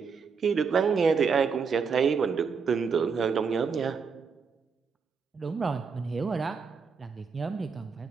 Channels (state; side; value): quieter; left; 5.6 dB